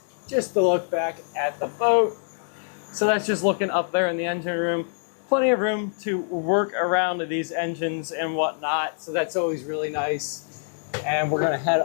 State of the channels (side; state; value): right; silent; 62 dB below the other